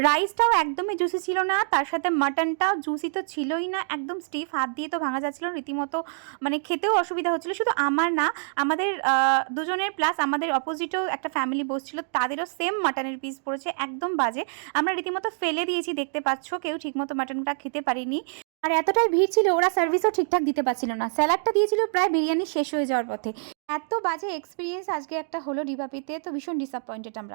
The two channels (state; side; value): silent; left; digital silence